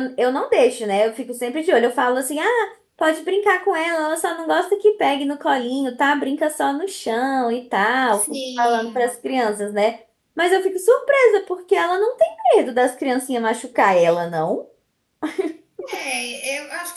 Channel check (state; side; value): identical; both; correlation 1.00